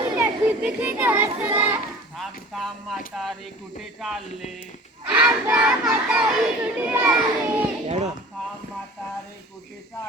थांब थांब म्हातारी कुठे चालले. थांब थांब म्हातारे कुठे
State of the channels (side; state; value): both; normal; correlation 0.42